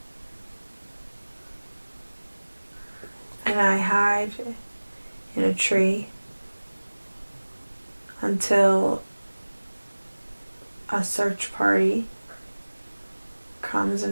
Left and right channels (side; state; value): both; inverted; correlation -1.00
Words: And I hide in a tree until a search party comes